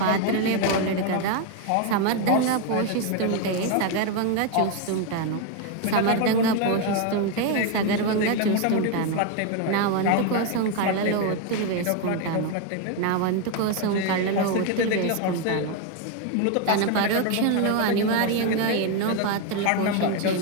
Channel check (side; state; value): both; different; correlation 0.01